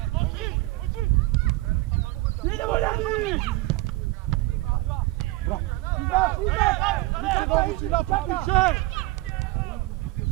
Idemo, Ljani! Više nogu si napred, više!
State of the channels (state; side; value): quieter; left; 19.7 dB